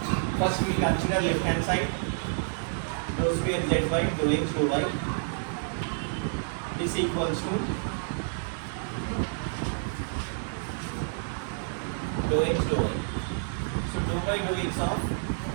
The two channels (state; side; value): silent; left; digital silence